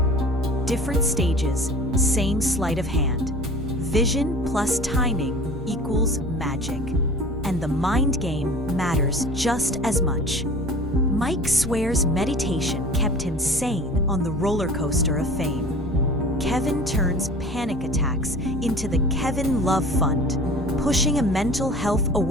Different stages, same sleight of hand. Vision plus timing equals magic. And the mind game matters just as much. Mike swears meditation kept him sane on the roller coaster of fame. Kevin turns panic attacks into the Kevin Love Fund, pushing a mental health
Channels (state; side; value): normal; both; correlation 0.41